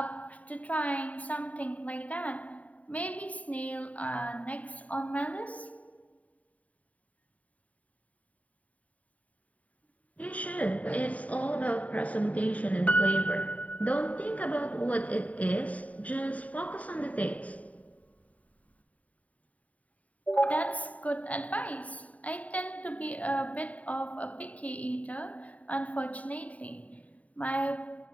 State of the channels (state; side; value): late; right; 0.069 ms